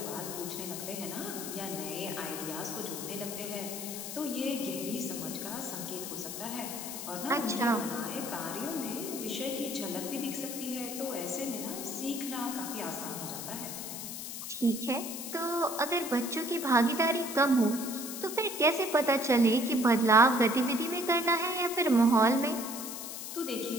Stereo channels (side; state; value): left; noise; hiss, 7 dB below the sound